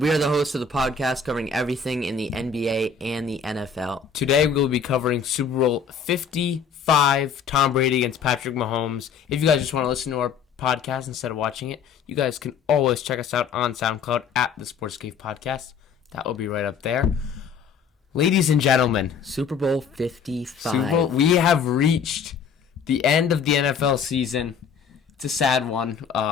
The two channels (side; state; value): right; quieter; 6.3 dB